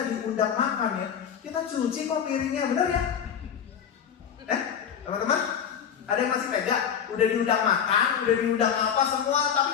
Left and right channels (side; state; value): right; quieter; 8.1 dB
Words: diundang makan ya, kita cuci kok piringnya, benar ya? Teman-teman, ada yang masih tega? Udah diundang makan, udah diundang apa semua, tapi